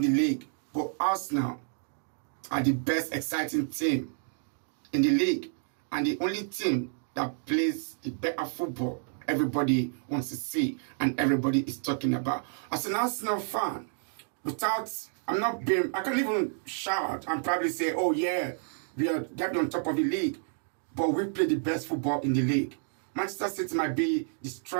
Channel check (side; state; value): left; silent; digital silence